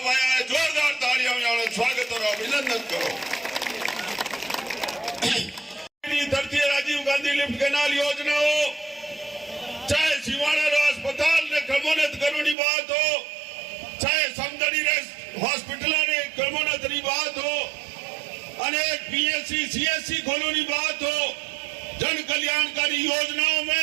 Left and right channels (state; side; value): drops out; left; at 12.6 s